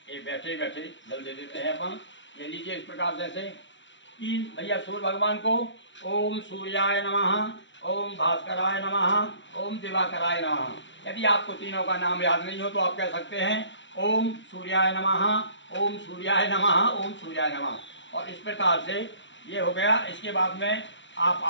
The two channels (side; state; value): right; late; 0.54 ms